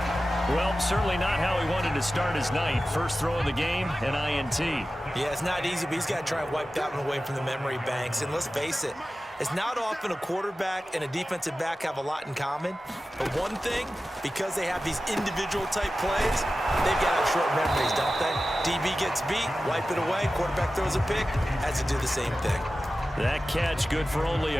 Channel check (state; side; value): normal; both; correlation 0.94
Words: Well, certainly not how he wanted to start his night. First throw of the game, an INT. Yeah, it's not easy, but he's got to try and wipe that one away from the memory banks. And let's face it, it's not often a quarterback and a defensive back have a lot in common. But one thing, because they have these individual type plays, they've got to have short memories, don't they? DB gets beat, wipe it away, quarterback throws a pick, has to do the same thing. That catch good for only